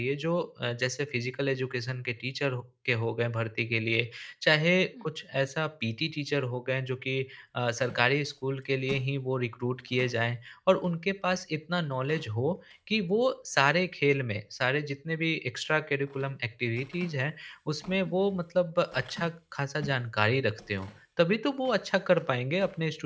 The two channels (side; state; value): both; identical; correlation 1.00